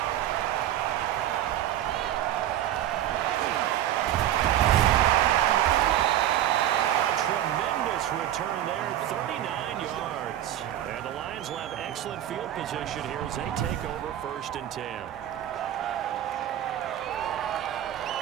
Return there, 39 yards. And the Lions will have excellent field position here as they take over 1st and 10.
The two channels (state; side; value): quieter; left; 12.2 dB